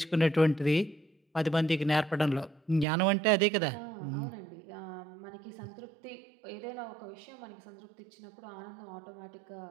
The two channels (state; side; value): drops out; left; at 2.9 s